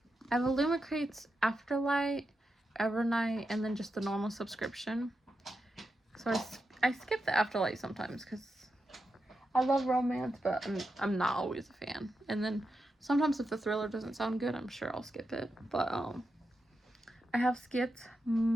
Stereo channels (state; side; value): normal; both; correlation 0.88